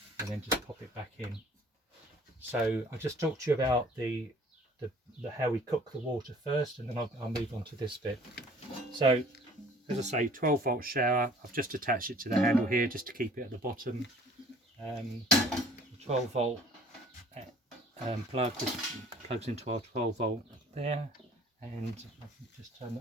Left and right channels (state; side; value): normal; both; correlation 0.53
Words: and then just pop it back in. So I'll just talk to you about the how we cook the water first, and then I'll move on to this bit. So as I say, 12-volt shower. I've just attached it to the handle here just to keep it at the bottom. The 12-volt plug just plugs into our 12-volt there, and I can just turn